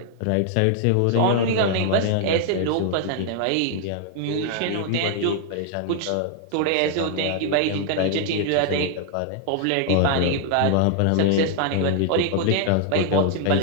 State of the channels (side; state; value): both; different; correlation 0.00